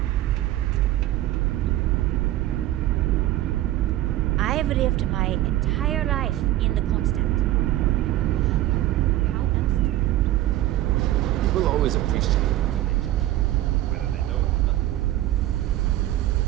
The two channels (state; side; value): quieter; left; 14.9 dB